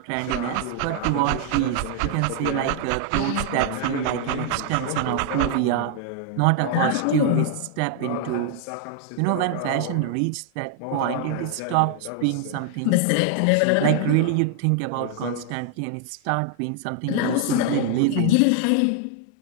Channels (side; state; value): both; different; correlation 0.00